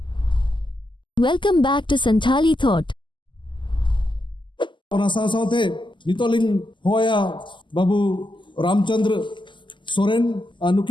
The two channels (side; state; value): right; late; 0.24 ms